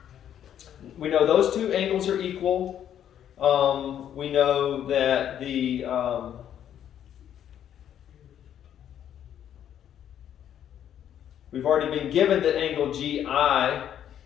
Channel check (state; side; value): quieter; right; 10.0 dB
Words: we know those two angles are equal. We know that the we've already been given that angle GI